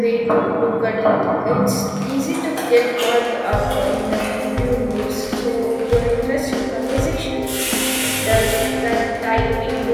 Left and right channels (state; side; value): identical; both; correlation 1.00